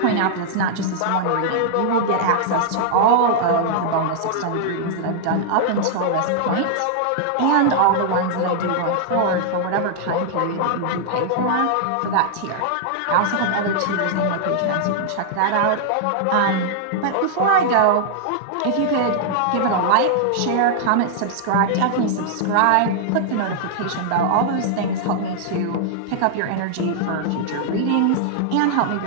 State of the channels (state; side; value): different; both; correlation -0.01